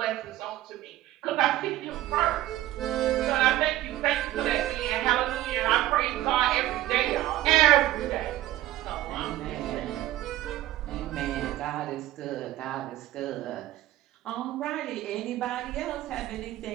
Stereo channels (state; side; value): quieter; left; 15.2 dB